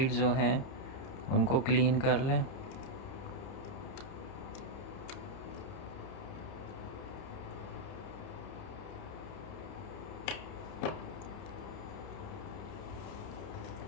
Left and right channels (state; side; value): late; right; 30 ms